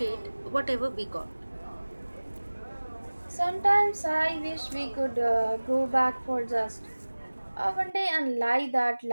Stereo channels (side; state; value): both; inverted; correlation -1.00